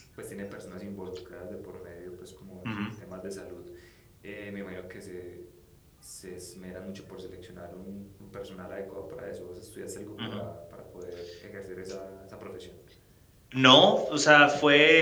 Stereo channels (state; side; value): identical; both; correlation 1.00